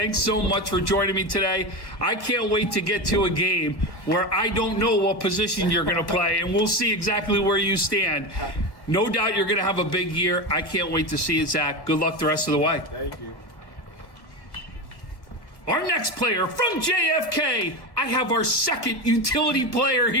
so much for joining me today. I can't wait to get to a game where I don't know what position you're going to play, and we'll see exactly where you stand. No doubt you're going to have a big year. I can't wait to see it, Zach. Good luck the rest of the way. Thank you. Our next player from JFK, I have our second utility player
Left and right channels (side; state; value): right; late; 1.1 ms